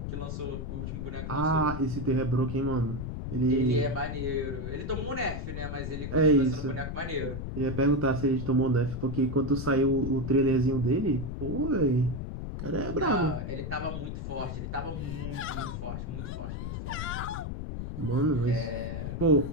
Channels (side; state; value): left; noise; rumble, 5 dB below the sound